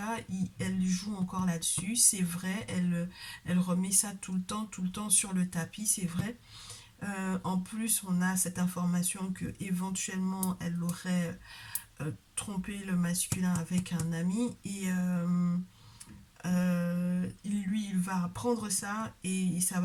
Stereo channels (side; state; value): both; identical; correlation 1.00